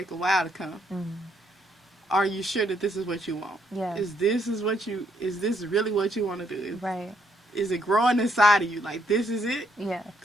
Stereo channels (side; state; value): both; normal; correlation 0.72